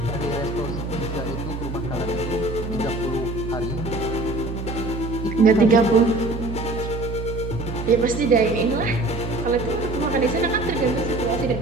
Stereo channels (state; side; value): noise; right; hum, 6 dB below the sound